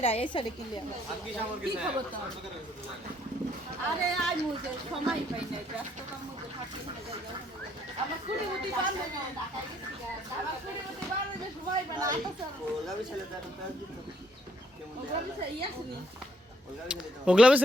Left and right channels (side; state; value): both; normal; correlation 0.68